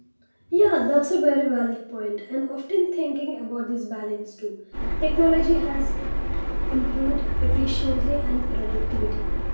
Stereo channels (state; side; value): inverted; both; correlation -1.00